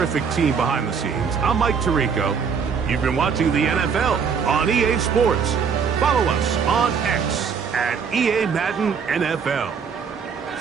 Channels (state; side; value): quieter; left; 6.3 dB